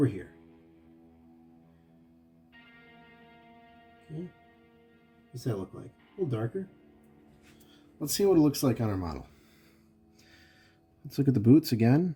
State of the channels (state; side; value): identical; both; correlation 1.00